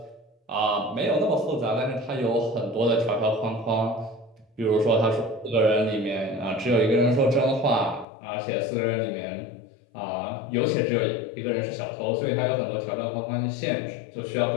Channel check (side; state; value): right; drops out; at 8.1 s